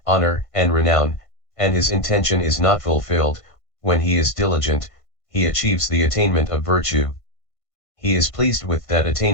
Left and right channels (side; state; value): right; late; 1.5 ms